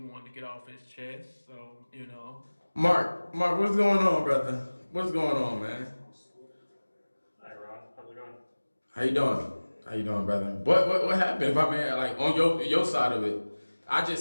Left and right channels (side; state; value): both; inverted; correlation -1.00